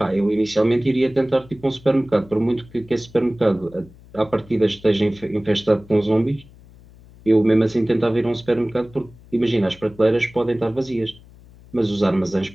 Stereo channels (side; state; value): left; noise; hum, 23 dB below the sound